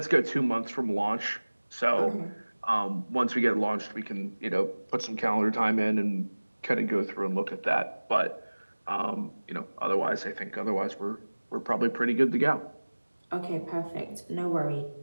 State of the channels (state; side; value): inverted; both; correlation -1.00